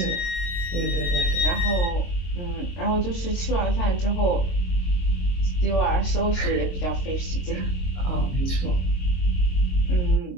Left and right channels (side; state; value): right; late; 22 ms